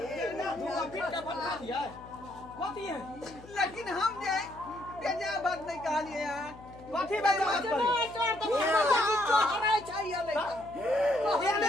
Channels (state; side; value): noise; left; hum, 19 dB below the sound